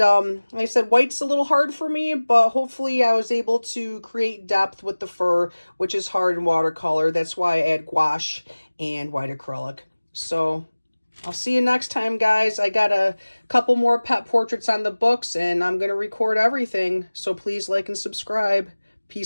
like I said, white's a little hard for me, but hopefully I was able to create depth with the fur, which is hard in watercolor. That's why I add gouache and white acrylic. So I'll see you next time, guys. I got a couple more pet portraits on the books, and I'm going to record everything. So please like and subscribe.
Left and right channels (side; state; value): both; inverted; correlation -1.00